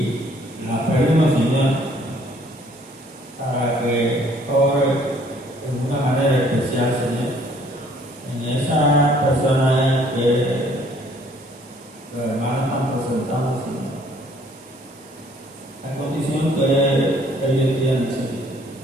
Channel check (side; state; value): both; normal; correlation 0.60